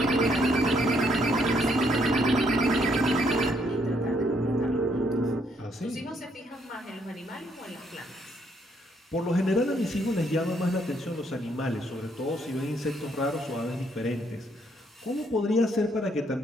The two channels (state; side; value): normal; both; correlation 0.71